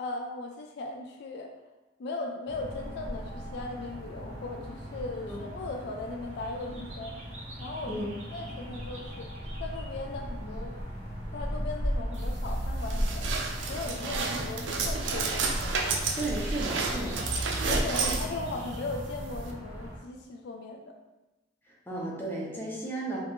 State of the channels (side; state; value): both; normal; correlation 0.38